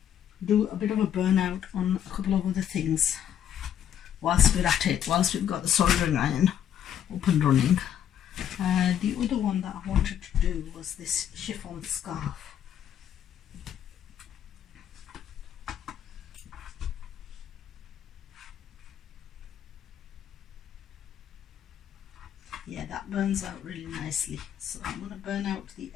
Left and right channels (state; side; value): quieter; right; 9.8 dB